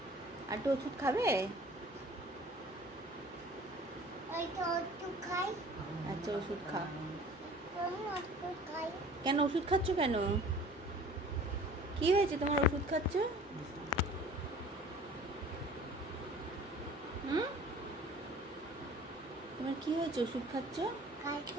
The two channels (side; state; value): both; normal; correlation 0.47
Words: আর একটু ওষুধ খাবে? আচ্ছা, ওষুধ খাও। কেন ওষুধ খাচ্ছ কেন? কি হয়েছে তোমার ওষুধ খাচ্ছ? তোমার কি হয়েছে ওষুধ খাচ্ছ?